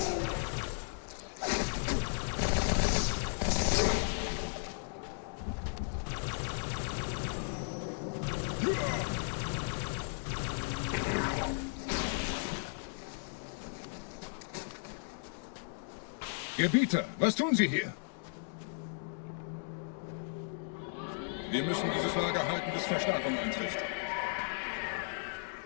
Gebieter, was tun Sie hier? Wir müssen dieses Lager halten, bis Verstärkung eintrifft.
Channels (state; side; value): silent; right; digital silence